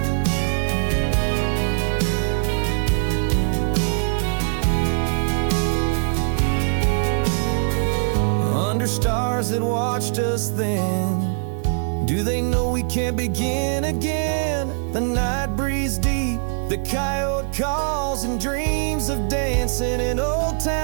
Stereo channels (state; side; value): silent; left; digital silence